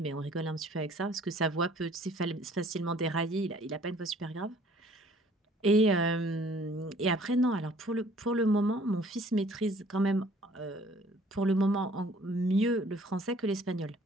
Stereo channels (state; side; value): normal; both; correlation 0.56